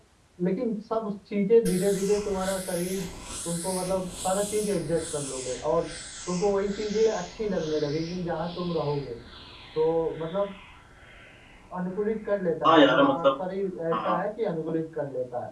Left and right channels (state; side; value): identical; both; correlation 1.00